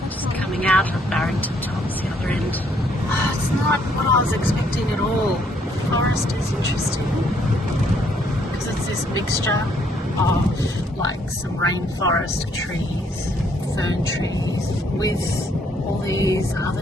just coming out of Barrington tops, the other end. Oh, it's not what I was expecting at all. Forest is interesting because it's this mixture of like some rainforest trees, fern trees, with all these other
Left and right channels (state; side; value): normal; both; correlation 0.68